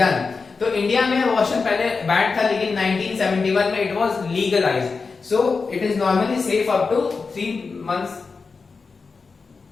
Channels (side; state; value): right; quieter; 4.6 dB